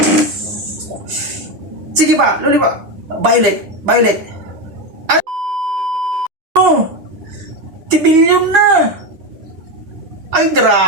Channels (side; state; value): left; late; 9.8 ms